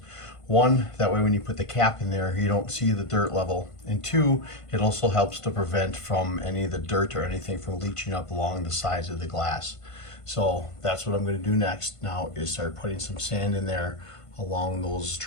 One, that way when you put the cap in there, you don't see the dirt level. And two, it also helps to prevent from any of the dirt or anything from leaching up along the sides of the glass. So that's what I'm going to do next now, is start putting some sand in there along those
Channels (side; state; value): right; late; 1.5 ms